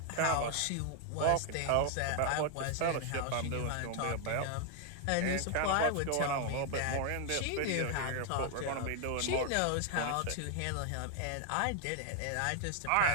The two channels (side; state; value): both; different; correlation 0.00